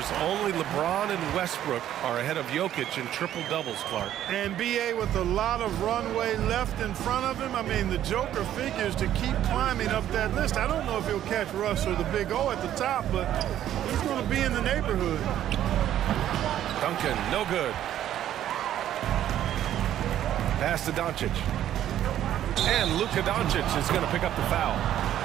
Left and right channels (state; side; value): quieter; left; 11.6 dB